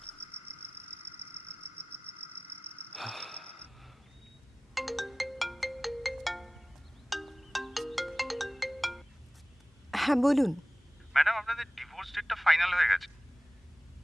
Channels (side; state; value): both; normal; correlation 0.98